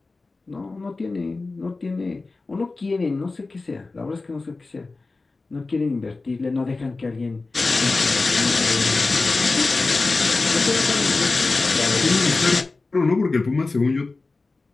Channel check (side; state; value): right; quieter; 3.6 dB